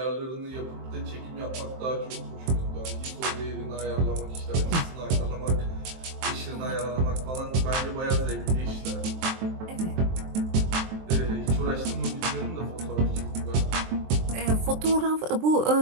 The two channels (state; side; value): late; left; 23 ms